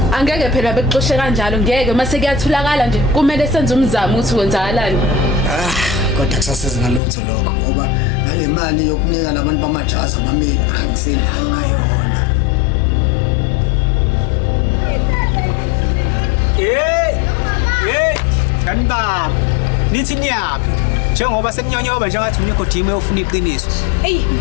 Angeke phela bekuxoshe kanjalo ngeke mase kuyatholakala nje kumele senze umzamo ukuthi kwenzakalani. Kodwa kusasiza ngalutho lokho ngoba ngale mali yokunika labantu bamajazi amamili angisenayo ngayona. Kanibaba nithi niyaphi njengoba sekunyonyoba njengathi unikho team eyofuna iqiniso. Ey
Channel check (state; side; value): drops out; right; at 7.0 s